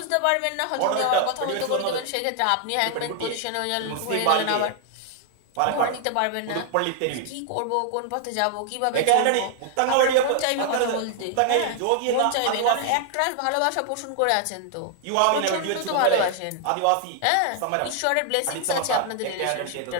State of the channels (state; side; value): different; both; correlation 0.00